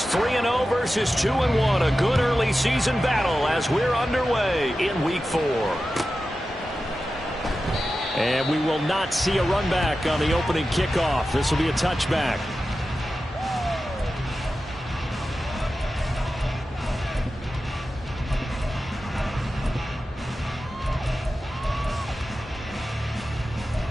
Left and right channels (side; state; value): both; normal; correlation 0.93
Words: 3-0 versus 2-1. A good early season battle as we're underway in Week 4. And we will not see a run back on the opening kickoff. This will be a touchback.